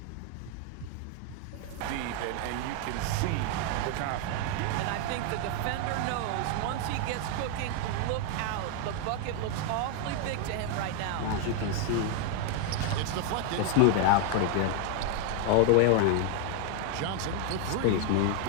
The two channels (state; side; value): different; both; correlation 0.00